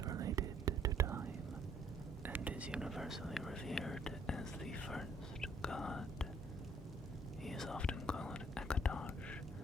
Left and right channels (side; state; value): both; normal; correlation 0.64